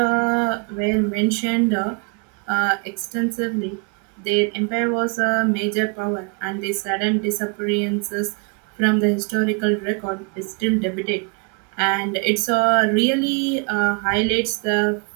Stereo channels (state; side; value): quieter; left; 35.0 dB